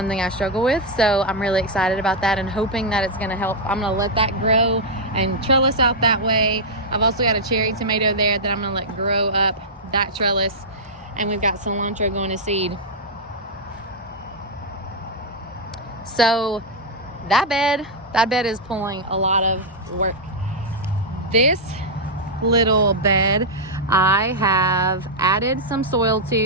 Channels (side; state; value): both; normal; correlation -0.04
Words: I struggle with. So I'm really excited about that and hoping that it's gonna help. I'm gonna let that grow and trellis out that way. I've also got a cherry tomato there that I'm gonna let grow up that trellis. And we've got cilantro going to seed. So that bed is pulling a lot of work. This little bed I have added some soil